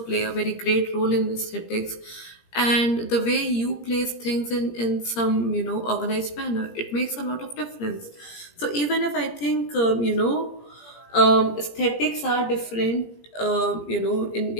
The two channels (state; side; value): late; right; 17 ms